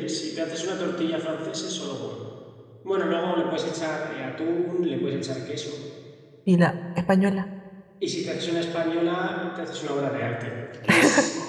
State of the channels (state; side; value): identical; both; correlation 1.00